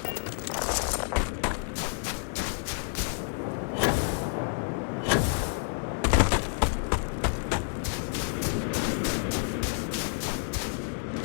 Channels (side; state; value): right; silent; digital silence